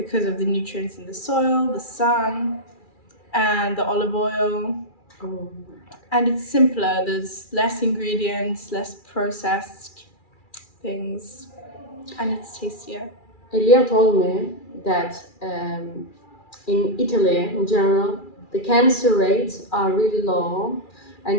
of the nutrients in the soil, the sun, and the olive oil. Oh. And it's simpler. There's less ingredients, less processed things, and it's tastier. Elia told me that in Italy, in general, the cancer rates are really low, and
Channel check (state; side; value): late; right; 2.4 ms